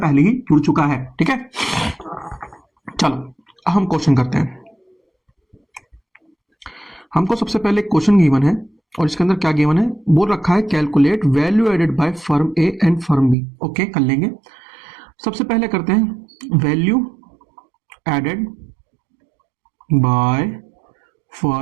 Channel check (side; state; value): left; drops out; at 13.4 s